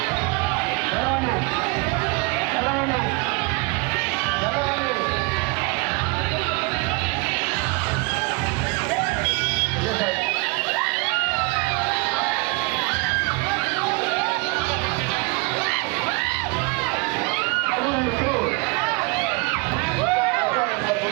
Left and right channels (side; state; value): left; quieter; 28.3 dB